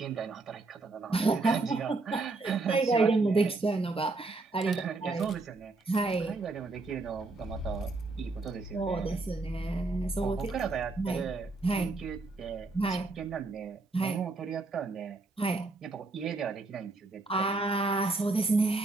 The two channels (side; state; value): left; quieter; 3.5 dB